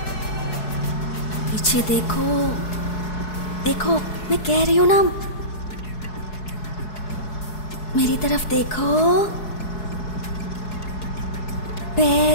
पीछे देखो, देखो, मैं कह रही हूँ ना, मेरी तरफ देखो।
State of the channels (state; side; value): late; right; 4.7 ms